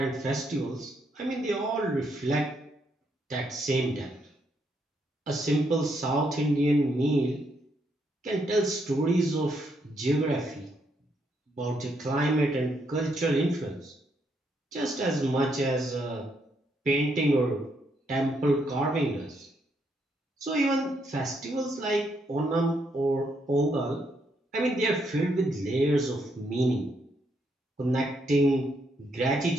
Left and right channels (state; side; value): normal; both; correlation 0.76